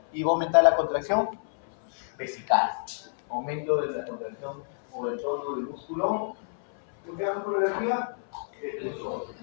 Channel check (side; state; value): right; silent; 59 dB below the other